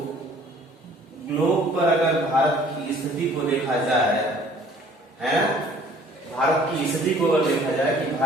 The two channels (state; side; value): normal; both; correlation 0.54